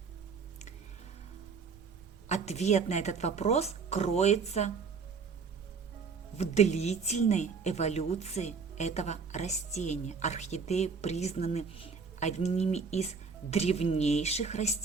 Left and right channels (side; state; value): left; quieter; 5.2 dB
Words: Ответ на этот вопрос кроется в длительной эволюции этого растения. Орхидеи признаны одними из древнейших